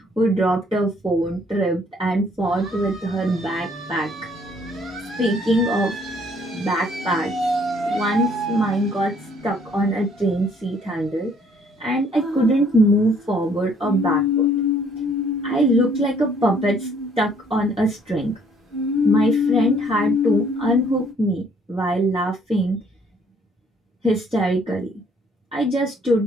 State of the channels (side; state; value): both; normal; correlation 0.62